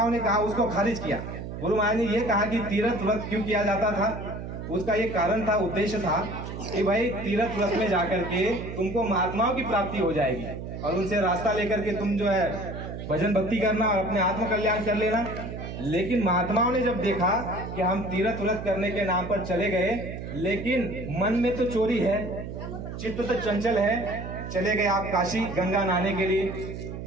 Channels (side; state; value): right; noise; hum, 8 dB below the sound